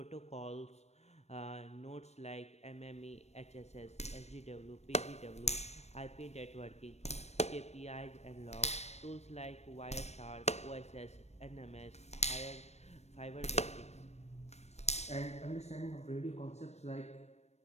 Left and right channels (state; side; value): late; right; 0.31 ms